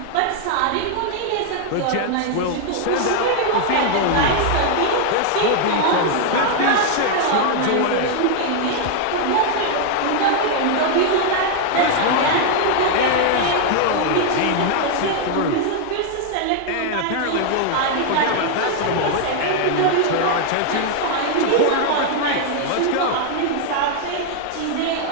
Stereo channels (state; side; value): different; both; correlation 0.00